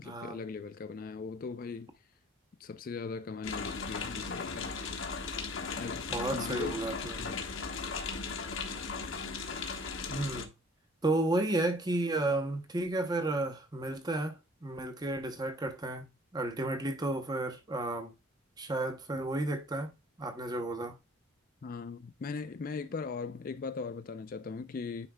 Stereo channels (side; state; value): both; normal; correlation 0.52